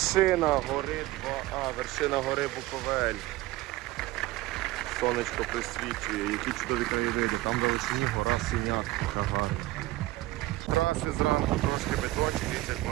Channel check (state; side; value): quieter; left; 18.1 dB